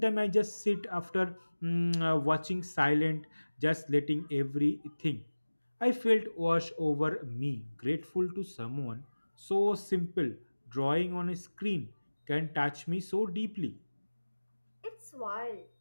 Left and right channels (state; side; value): inverted; both; correlation -1.00